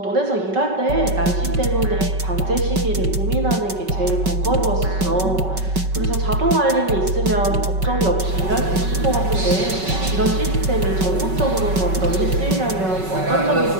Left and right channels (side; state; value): left; late; 5.3 ms